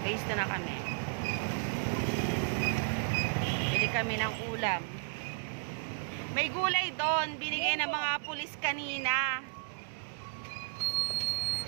Phase 2 na kami. Bili kami ng ulam. May gulay doon. Binigay ng mga pulis kanina.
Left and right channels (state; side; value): silent; left; digital silence